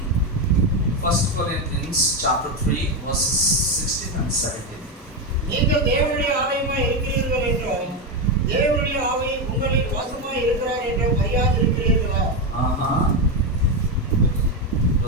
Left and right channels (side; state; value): both; normal; correlation 0.10